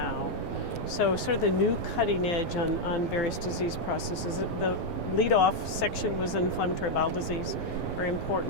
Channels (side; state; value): right; late; 9.5 ms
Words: So sort of the new cutting edge on various disease processes. The lead-off section was inflammatory bowel disease, very